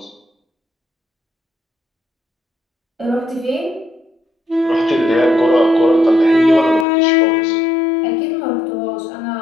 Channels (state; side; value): drops out; right; at 6.9 s